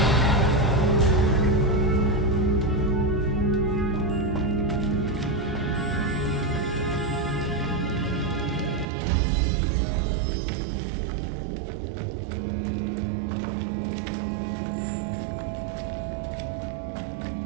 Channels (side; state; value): left; drops out; at 8.8 s